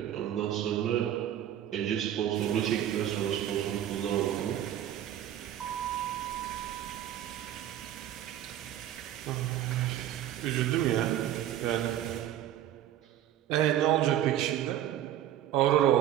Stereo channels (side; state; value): left; quieter; 11.7 dB